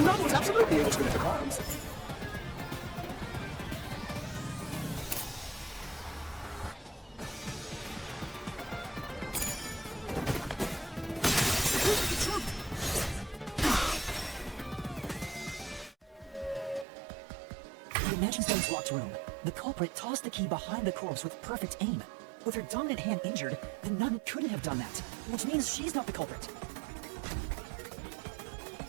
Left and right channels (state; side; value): drops out; left; at 16.9 s